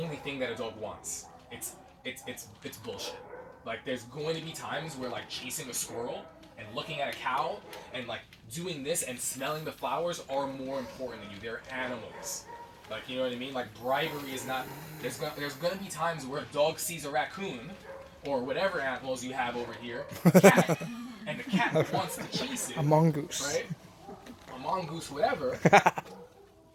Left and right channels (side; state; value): both; identical; correlation 1.00